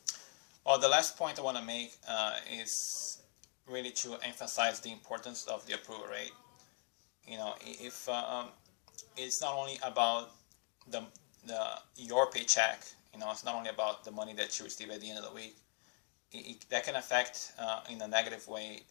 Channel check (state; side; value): quieter; right; 38.7 dB